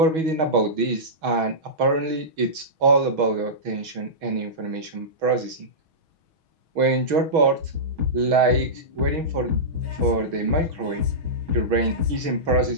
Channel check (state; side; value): late; left; 6.3 ms